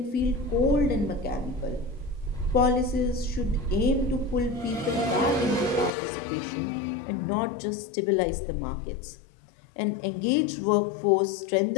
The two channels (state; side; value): drops out; right; at 6.0 s